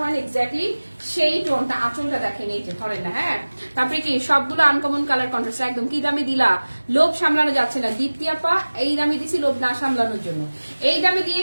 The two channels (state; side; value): inverted; both; correlation -1.00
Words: হয় এক্স্যাক্টলি সেই টোনটা। আঁচলটা দেখেন, এই যে ধরেন না, হ্যাঁ। তারপরে কি সবগুলো আনকমন কালার কন্ট্রাস্ট, একদম কি দামে দিলা, লোভ সামলানো যাচ্ছে না। দীপ্তি আপা এই দামে দিছি লোভ না সামলানোর জন্য, এই দামে